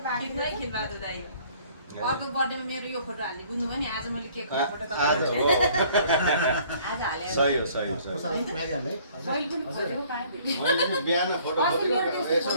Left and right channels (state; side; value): inverted; both; correlation -0.57